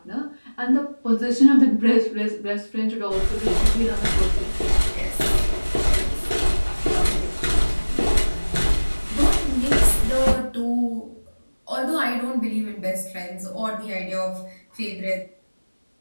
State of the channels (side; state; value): both; inverted; correlation -1.00